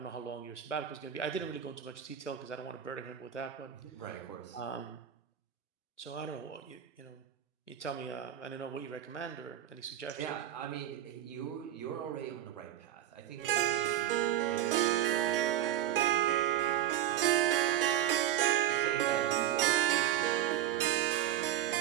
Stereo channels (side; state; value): left; quieter; 11.5 dB